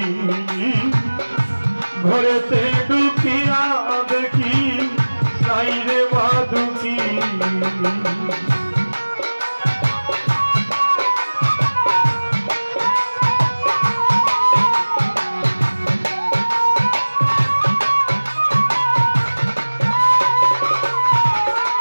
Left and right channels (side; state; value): both; inverted; correlation -1.00